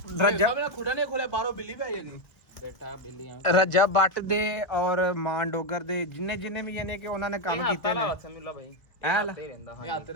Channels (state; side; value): late; right; 1.7 ms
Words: ਨਹੀਂ ਖੋਲਿਆ, ਬਾਹਰੋਂ ਬਿੱਲੀ ਪੈ ਜਾਣੀ। ਬੇਟਾ ਬਿੱਲੀਆਂ ਰਜਾ ਬੱਟ ਦੇ ਔਰ ਮਾਨ ਡੋਗਰ ਦੇ ਜਿੰਨੇ ਵੀ ਯਾਨੀ ਕਿ ਉਹਨਾਂ ਨੇ ਕੰਮ ਕੀਤੇ ਨੇ।